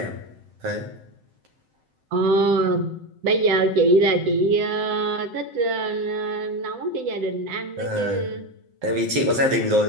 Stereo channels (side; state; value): left; late; 7.7 ms